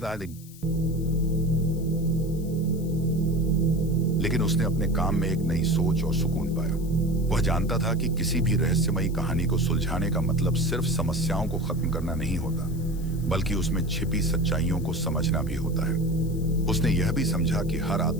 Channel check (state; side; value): noise; left; hiss, 21 dB below the sound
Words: लेकिन उसने अपने काम में एक नई सोच और सुकून पाया। वह जानता था कि किसी भी रहस्यमयी कहानी को सुलझाने का मतलब सिर्फ समस्याओं को खत्म करना नहीं होता, बल्कि उसमें छिपी सच्चाइयों को समझना भी होता है। उसने यह भी समझा कि हर